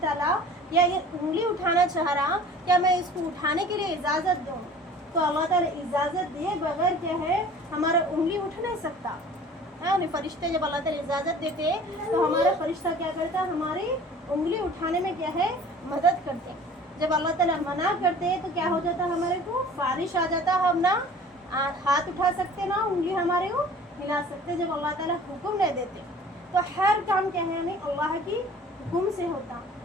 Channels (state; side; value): normal; both; correlation 0.46